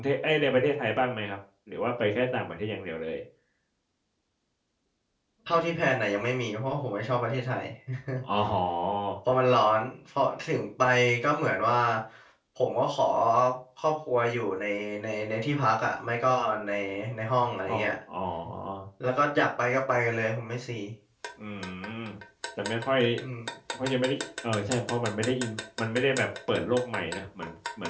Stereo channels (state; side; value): identical; both; correlation 1.00